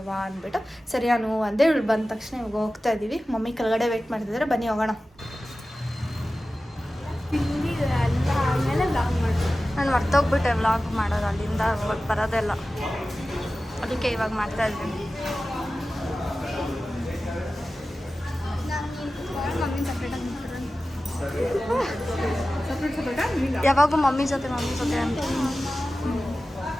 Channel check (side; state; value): both; normal; correlation 0.95